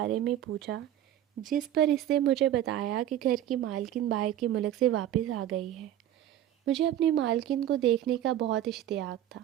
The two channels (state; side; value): quieter; left; 11.9 dB